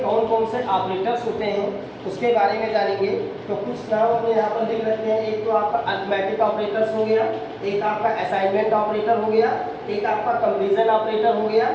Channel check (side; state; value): both; identical; correlation 1.00